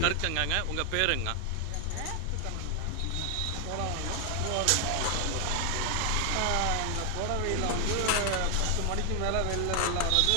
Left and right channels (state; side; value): different; both; correlation 0.00